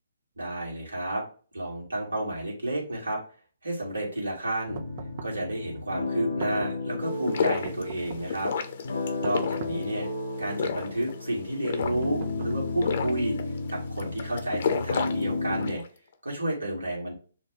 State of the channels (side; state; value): both; inverted; correlation -0.79